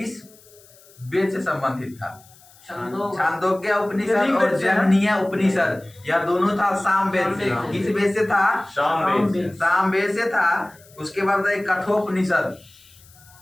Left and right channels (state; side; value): noise; left; hiss, 26 dB below the sound